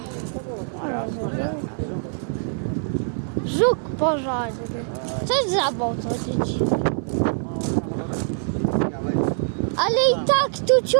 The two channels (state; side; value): silent; left; 60 dB below the other